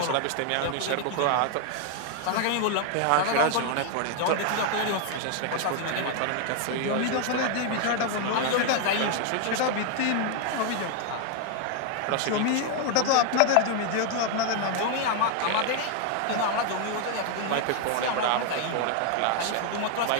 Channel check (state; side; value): different; both; correlation 0.00